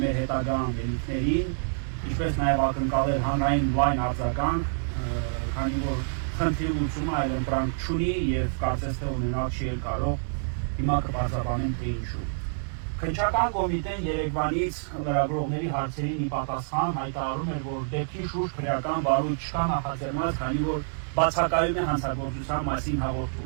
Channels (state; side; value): silent; left; digital silence